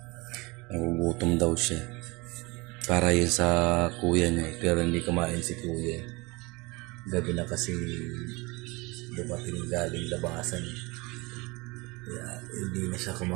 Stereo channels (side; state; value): left; quieter; 25.0 dB